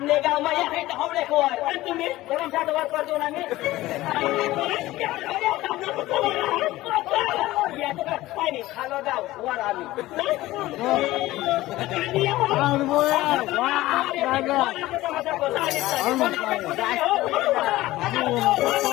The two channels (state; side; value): quieter; right; 17.1 dB